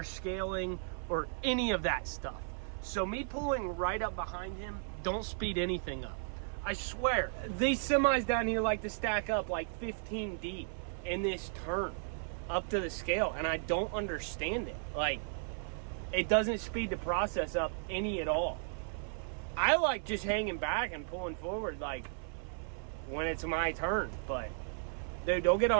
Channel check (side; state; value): left; silent; 54 dB below the other